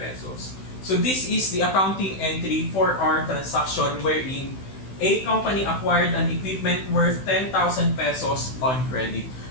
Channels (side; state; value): right; late; 16 ms